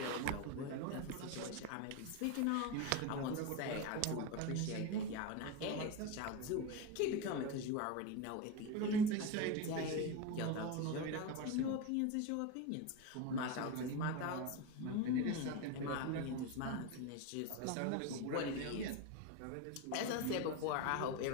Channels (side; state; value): both; different; correlation 0.05